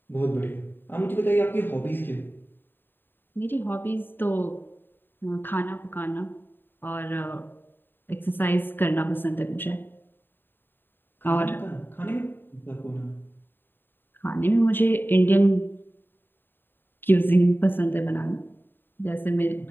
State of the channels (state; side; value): late; right; 0.096 ms